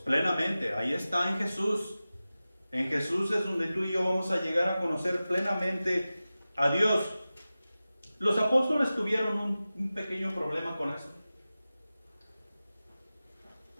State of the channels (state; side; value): inverted; both; correlation -0.96